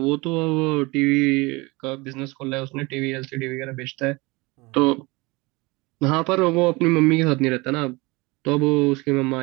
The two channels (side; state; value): left; quieter; 24.3 dB